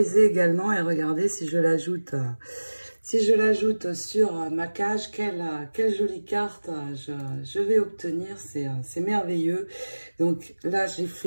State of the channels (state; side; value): inverted; both; correlation -1.00